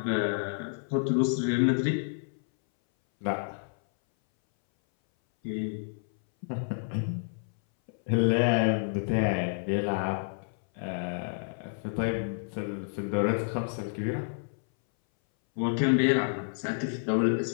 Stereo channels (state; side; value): silent; right; 58 dB below the other